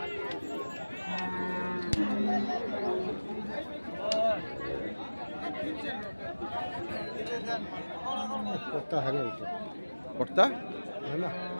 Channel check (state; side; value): inverted; both; correlation -1.00